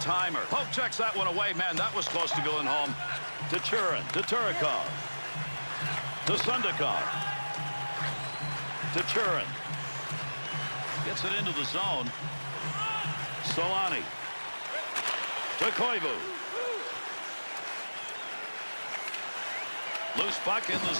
Pope checks that one away. Man, that was close to going home. To Churin. To Turikov. To Sundakov. To Churin. Gets it into the zone. Solani. To Koivu. Loose puck in the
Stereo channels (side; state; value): both; inverted; correlation -1.00